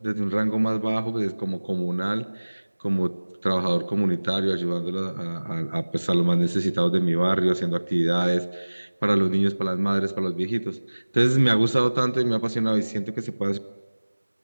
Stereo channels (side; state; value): both; inverted; correlation -1.00